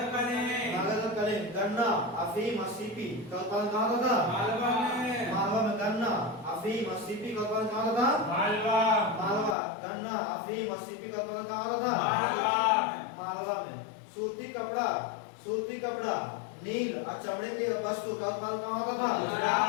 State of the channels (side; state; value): right; drops out; at 9.6 s